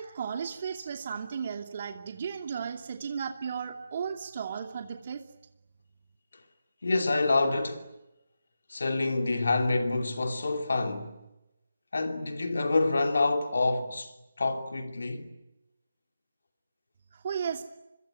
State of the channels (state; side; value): inverted; both; correlation -0.89